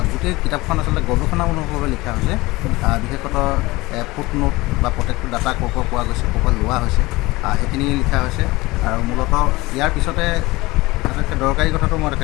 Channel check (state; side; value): quieter; right; 21.1 dB